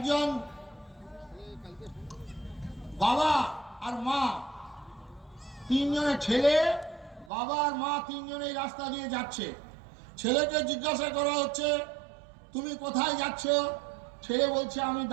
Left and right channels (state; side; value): drops out; left; at 7.3 s